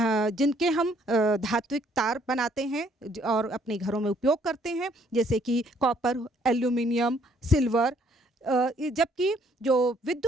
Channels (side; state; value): both; normal; correlation 0.65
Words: जिनके हम धात्विक तार बनाते हैं और अपने घरों में उपयोग करते हैं, जैसे कि कॉपर, एल्यूमिनियम, सिल्वर। जबकि जो